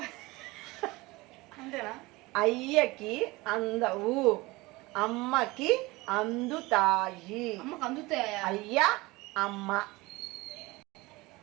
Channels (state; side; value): quieter; left; 21.9 dB